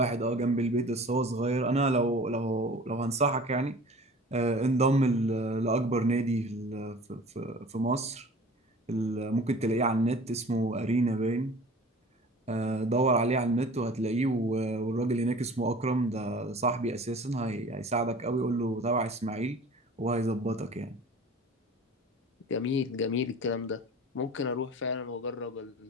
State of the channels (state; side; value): normal; both; correlation 0.43